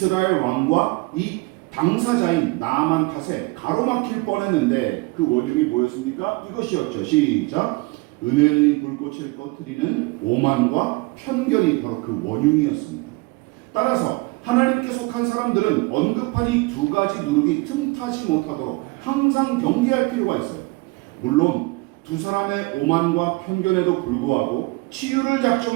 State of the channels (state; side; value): quieter; left; 25.0 dB